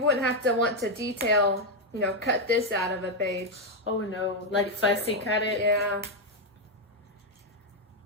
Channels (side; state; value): both; normal; correlation 0.02